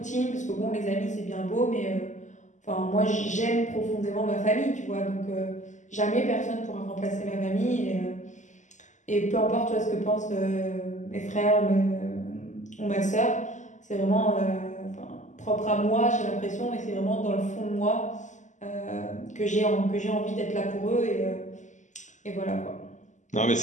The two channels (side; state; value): right; late; 0.35 ms